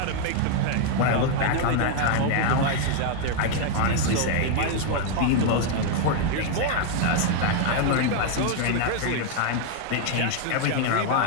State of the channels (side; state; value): both; different; correlation 0.00